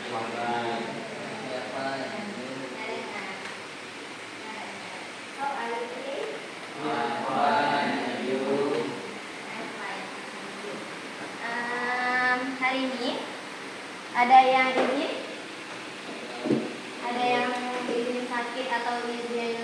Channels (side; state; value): both; identical; correlation 1.00